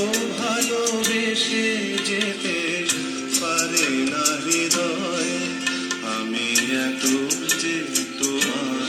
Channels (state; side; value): identical; both; correlation 1.00